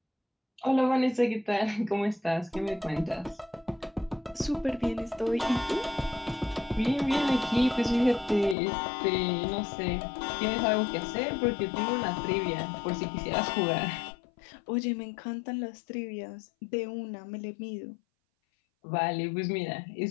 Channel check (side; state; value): right; drops out; at 8.6 s